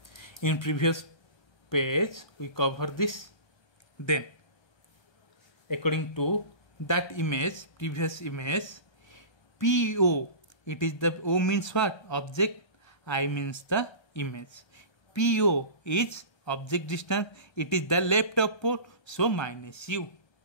In previous page, we cover this. Then, according to that image, previous image, PO, it is the O means what? Object, I means the image. PO is object distance, it is the left of pole, so minus U.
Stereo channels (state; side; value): late; right; 1.3 ms